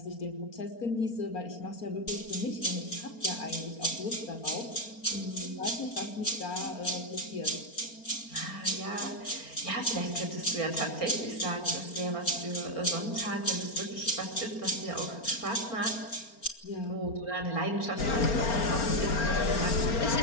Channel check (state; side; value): late; right; 4.4 ms